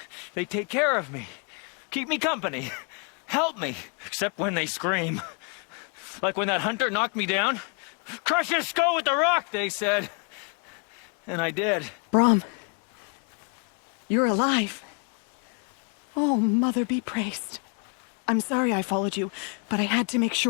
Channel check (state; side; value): quieter; right; 37.7 dB